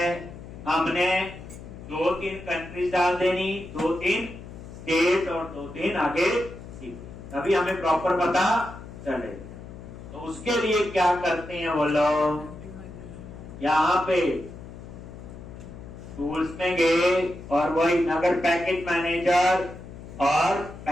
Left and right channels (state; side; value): noise; left; hum, 14 dB below the sound